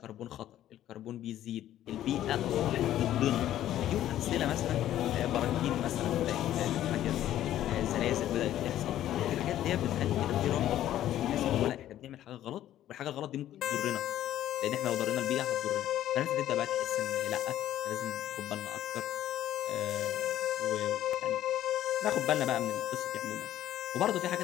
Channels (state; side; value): quieter; right; 12.5 dB